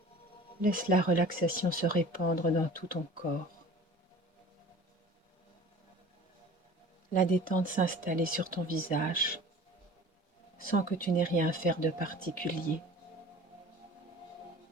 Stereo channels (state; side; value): normal; both; correlation 0.43